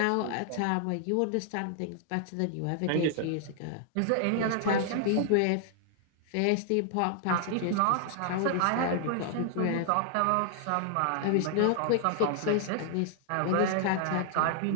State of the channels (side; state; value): both; different; correlation 0.00